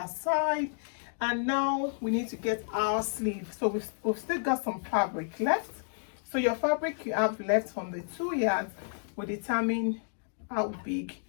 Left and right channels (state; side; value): silent; right; digital silence